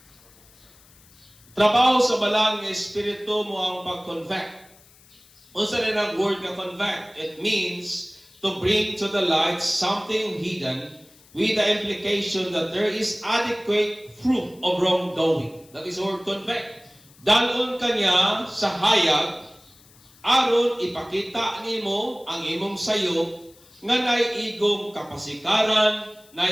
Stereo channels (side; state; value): left; noise; hiss, 27 dB below the sound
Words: Trabaho sa balang nga Espiritu mo ang pag-convict. Unsa rin ang word nga convict? It means to bring to the light something hidden with the implication that there is adequate fruit of wrongdoing. That is the word convict. Dalon kanya sa hayag, aron ipakita nimo ang imong sayop, nga naiigong kapasikaran,